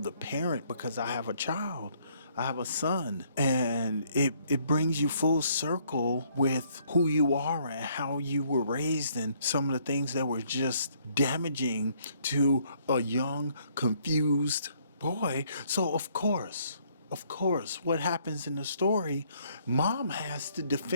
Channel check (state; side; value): inverted; both; correlation -0.66